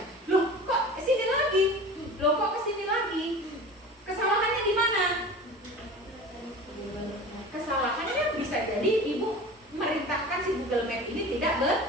Loh, kok sini lagi? Loh, kok kesini lagi? Kesalahannya di mana? Kesalahannya bisa jadi ibu merintahkan si Google Map ini tidak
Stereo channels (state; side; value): normal; both; correlation 0.37